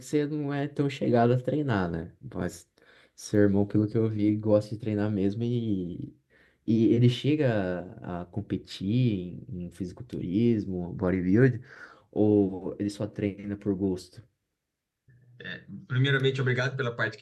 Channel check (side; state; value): both; identical; correlation 1.00